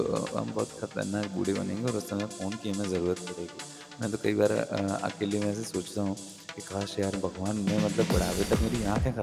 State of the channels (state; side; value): identical; both; correlation 1.00